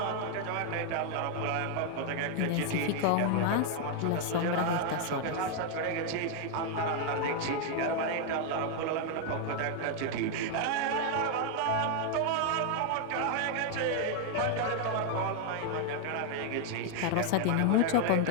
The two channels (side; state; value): both; different; correlation 0.00